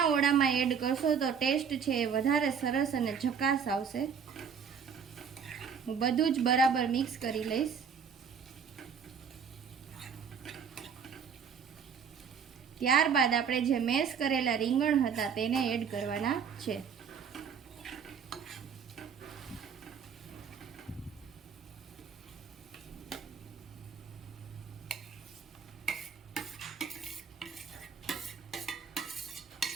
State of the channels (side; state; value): left; quieter; 6.8 dB